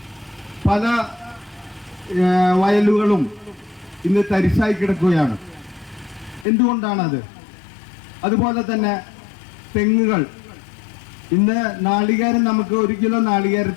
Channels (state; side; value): drops out; right; at 6.5 s